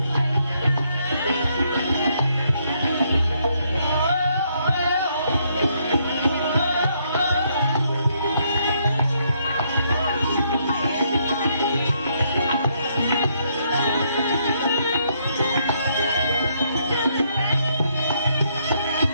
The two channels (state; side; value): inverted; both; correlation -0.72